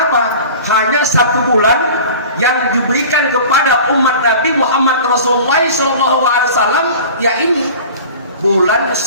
Hanya 1 bulan yang diberikan kepada umat Nabi Muhammad Rasulullah SAW, ya ini bulan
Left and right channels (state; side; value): inverted; both; correlation -0.40